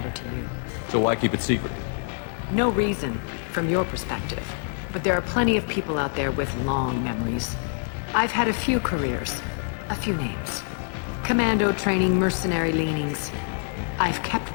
to you. So why keep it secret? No reason, from your perspective. But there are plenty of people out there with long memories. I've had a few careers, a few names. Commando training, mercenary leanings. I've kept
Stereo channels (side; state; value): right; silent; 59 dB below the other